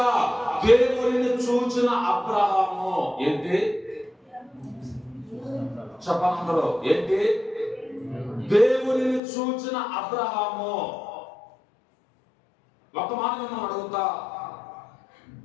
దేవునిని చూచిన అబ్రహాము ఏంటి? చెప్పనందరూ ఏంటి? దేవునిని చూచిన అబ్రహాము. ఒక మాట మనం అడుగుతా,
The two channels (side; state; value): right; drops out; at 9.2 s